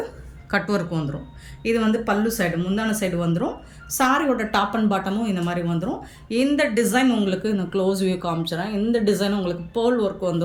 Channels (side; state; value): both; identical; correlation 1.00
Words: கட் ஒர்க் வந்துடும். இது வந்து பல்லு சைடு, முந்தான சைடு வந்துடும். சாரியோட டாப் அண்ட் பாட்டமும் இந்த மாதிரி வந்துடும். இந்த டிசைன் உங்களுக்கு நான் க்ளோஸ் வியூ காமிச்சிடறேன். இந்த டிசைன் உங்களுக்கு பேர்ல் ஒர்க்